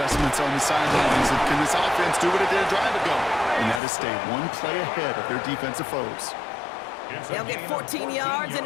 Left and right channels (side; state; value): right; drops out; at 3.8 s